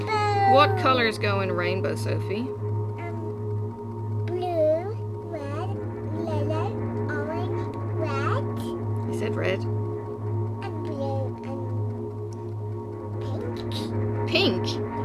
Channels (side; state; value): both; identical; correlation 1.00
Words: What colors go in rainbow, Sophie? Blue, red, yellow, orange, red, You said red. and blue, and pink. Pink?